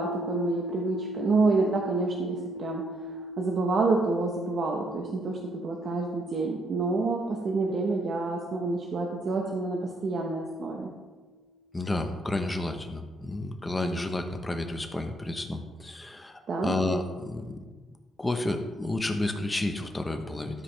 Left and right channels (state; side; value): normal; both; correlation 0.73